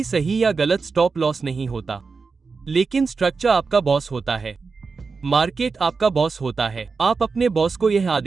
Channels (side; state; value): left; quieter; 4.7 dB